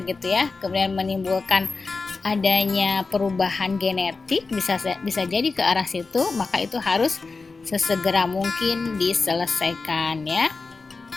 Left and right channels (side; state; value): right; quieter; 4.1 dB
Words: ya, kemudian menimbulkan adanya perubahan genetik, bisa jadi ke arah situ, maka itu harus sesegera mungkin diselesaikan ya.